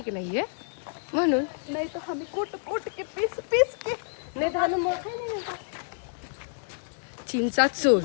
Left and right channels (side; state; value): right; silent; digital silence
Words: नहीं है म्हणून. नहीं तो हमें कोट के पीस के नहीं खाने मौका नहीं मिलता. चिंचा चूर,